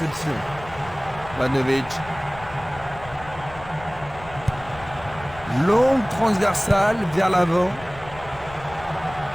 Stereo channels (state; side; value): noise; left; rumble, 17 dB below the sound